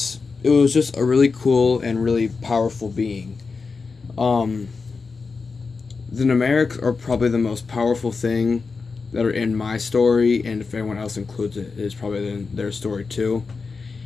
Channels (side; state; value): right; quieter; 4.6 dB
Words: it was just a really cool and really powerful being. Um, the Ragmareeks are probably the most powerful thing that are in my story, and if anyone else includes it, it's probably in their story too,